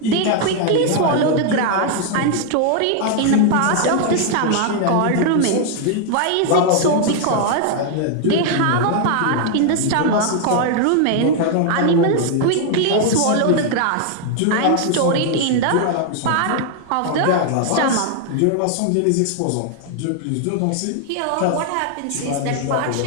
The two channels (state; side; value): different; both; correlation 0.00